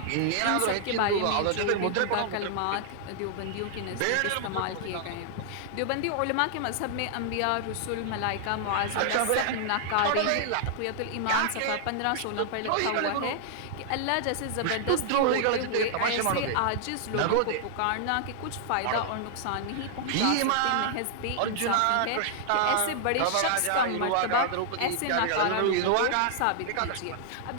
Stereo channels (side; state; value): both; different; correlation -0.01